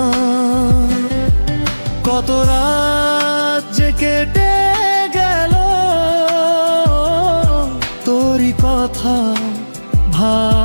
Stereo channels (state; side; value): inverted; both; correlation -1.00